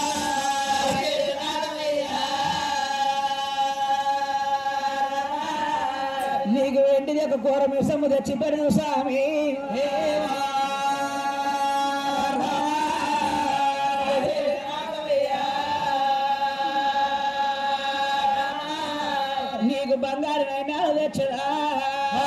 నీకు వెంటిది ఒక కూర మిసము తెచ్చి పెడదు స్వామి నీకు బంగారు నైనాలు తెచ్చడా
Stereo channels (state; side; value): identical; both; correlation 1.00